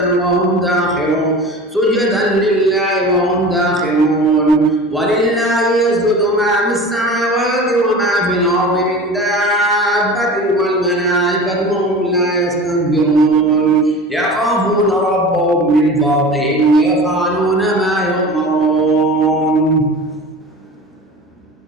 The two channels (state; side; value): normal; both; correlation 0.35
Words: سجدا لله وهم داخرون ولله يسجد ما في السماوات وما في الأرض من دابة والملائكة وهم لا يستكبرون يخافون ربهم من فوقهم ويفعلون ما يؤمرون.